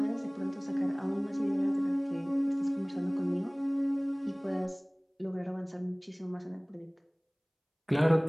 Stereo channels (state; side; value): identical; both; correlation 1.00